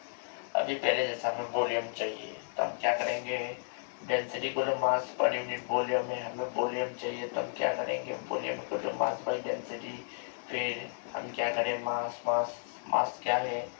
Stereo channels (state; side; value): silent; right; digital silence